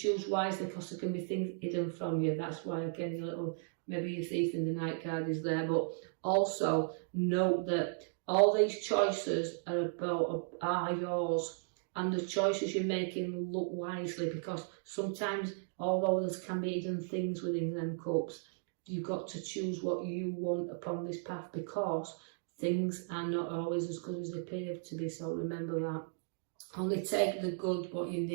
wisely, because there can be things hidden from you. That's why again your little, maybe your thief in the night card is there. But also note that all these choices are yours, and the choices you're making, look wisely, because sometimes although there can be hidden things within them cups, you've got to choose what you want upon this path, because things are not always as good as they appear to be. So remember that. Only take the good, what you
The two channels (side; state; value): left; silent; digital silence